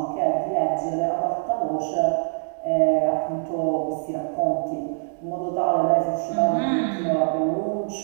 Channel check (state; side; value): silent; left; digital silence